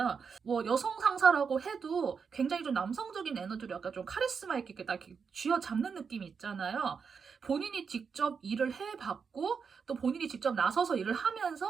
뭐 여성 상사라고 해도 굉장히 좀 남성적인 에너지로 약간 좀 카리스마 있게 딱 이렇게 쥐어잡는 느낌이 있잖아요. 본인이 직접 일을 해봤고 또 본인이 직접 나서서 일을 하면서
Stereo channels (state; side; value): quieter; left; 5.9 dB